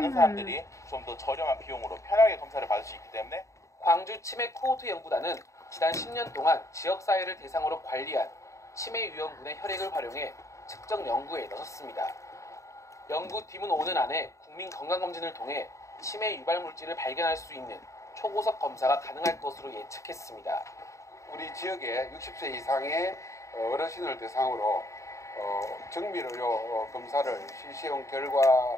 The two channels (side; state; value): right; late; 0.15 ms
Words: 사람들이 좀 더 저렴한 비용으로 편하게 검사를 받을 수 있기 때문에 광주 치매 코호트 연구단은 지난 10년 동안 지역사회를 대상으로 관리한 치매 유형군의 혈액을 활용해 측정 연구에 나섰습니다. 연구팀은 오는 안에 국민 건강검진을 통해 치매 유발 물질을 발견할 수 있는 초고속 검사가 가능할 것으로 예측했습니다. 우리 지역의 60세 이상의 어르신을 대상으로 정밀의료 검사를 실시한